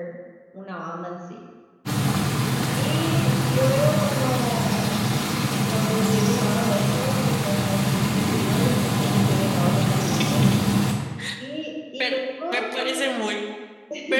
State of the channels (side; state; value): both; identical; correlation 1.00